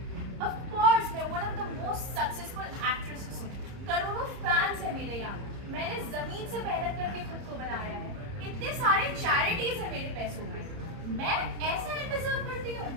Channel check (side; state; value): left; late; 30 ms